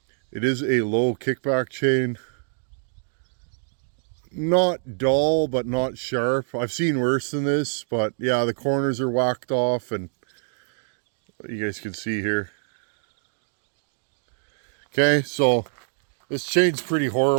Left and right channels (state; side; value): silent; left; 62 dB below the other